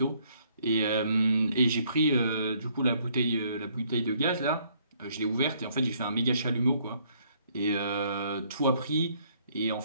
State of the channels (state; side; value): inverted; both; correlation -0.66